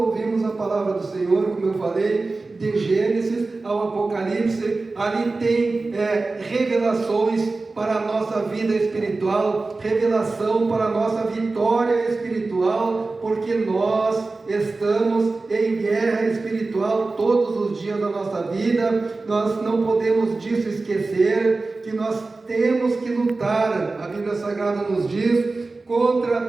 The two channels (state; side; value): quieter; left; 3.5 dB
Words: a palavra do Senhor, como eu falei, de Gênesis ao Apocalipse. Ali tem revelações para a nossa vida espiritual, revelação para a nossa vitória espiritual, porque nós estamos em guerra espiritual todos os dias da nossa vida. Nós não podemos disso esquecer, que nós temos que lutar. A Bíblia Sagrada nos diz: